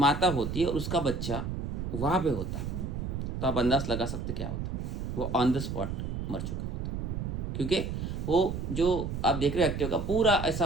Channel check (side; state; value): right; noise; rumble, 4 dB below the sound